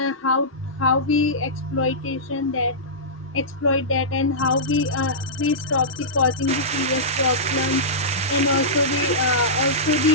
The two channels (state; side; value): normal; both; correlation -0.16